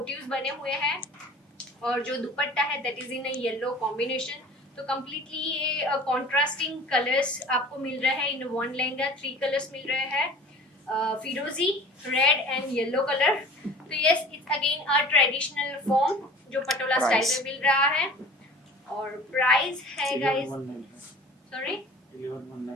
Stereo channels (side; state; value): both; normal; correlation 0.43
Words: बने हुए हैं और जो दुपट्टा है that is in a yellow combination. तो कम्प्लीटली ये कॉन्ट्रास्टिंग कलर्स आपको मिल रहे हैं इन वन लहंगा, 3 कलर्स मिल रहे हैं, फिरोजी, रेड एंड येलो कलर। तो yes it's again a traditional form जो पटोला स्टाइल में मिल रहा है और प्राइस है guys, sorry